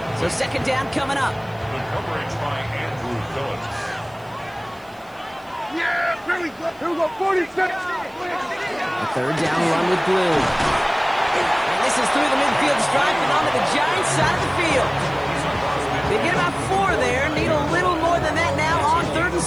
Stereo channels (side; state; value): right; noise; hiss, 29 dB below the sound